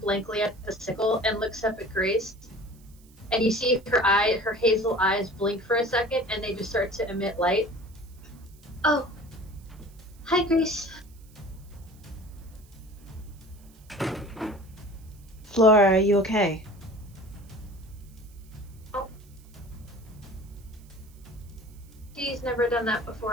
at the sickle and looks up at Grace. And you see her hazel eyes blink for a second and they just start to emit light. Oh. Hi, Grace. Flora, are you okay? She's never done that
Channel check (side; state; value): right; noise; hiss, 28 dB below the sound